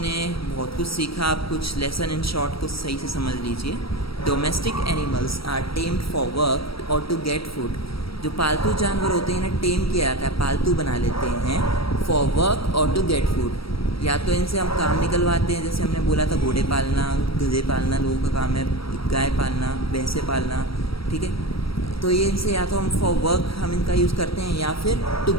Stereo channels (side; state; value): right; late; 0.75 ms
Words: बहुत कुछ सीखा, आप कुछ लेसन इन शॉर्ट कुछ सही से समझ लीजिए। Domestic animals are tamed for work और टू गेट फूड। जो पालतू जानवर होते हैं इन्हें टेम किया जाता है, पालतू बना लेते हैं फॉर वर्क और टू गेट फूड। या तो इनसे हम काम निकलवाते हैं, जैसे हमने बोला था घोड़े पालना, गधे पालना लोगों का काम है, गाय पालना, भैंसे पालना, ठीक है। तो ये इनसे या तो हम फॉर वर्क हम इनका यूज़ करते हैं, या फिर टू